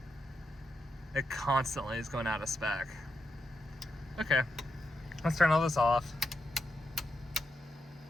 it constantly is going out of spec. Okay, let's turn all this off.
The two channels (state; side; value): normal; both; correlation 0.86